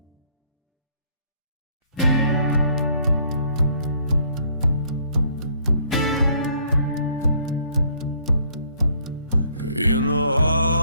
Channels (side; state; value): both; inverted; correlation -0.63